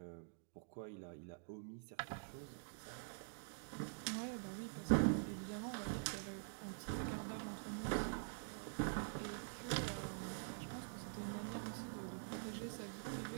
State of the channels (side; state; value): left; silent; digital silence